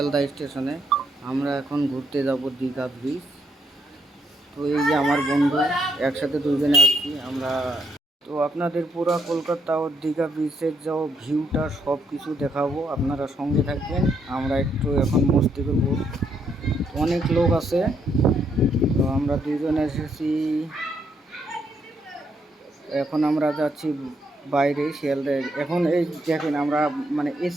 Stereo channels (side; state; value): both; normal; correlation 0.75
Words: স্টেশনে। আমরা এখন ঘুরতে যাব দীঘা ব্রিজ। তো এই যে আমার বন্ধু, একসাথে দুজনে আসছি আমরা। তো আপনাদের পুরো কলকাতা ও দীঘা ব্রিজের যা ভিউটা সব কিছু দেখাবো, আপনারা সঙ্গে থাকবেন। আমরা একটু এখন মস্তি করবো, অনেক লোক আছে। তো আমরা দুজনে এসেছি, এখন আমরা যাচ্ছি বাইরে শিয়ালদায়। এখন এই দেখেন, আমরা মানে